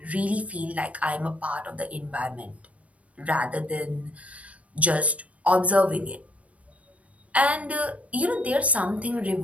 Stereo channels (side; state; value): left; late; 0.065 ms